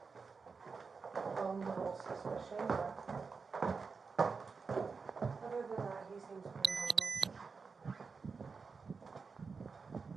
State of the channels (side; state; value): left; quieter; 4.9 dB